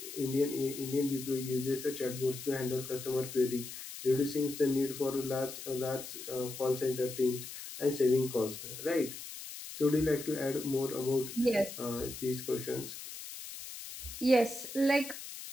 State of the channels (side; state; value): left; noise; hiss, 11 dB below the sound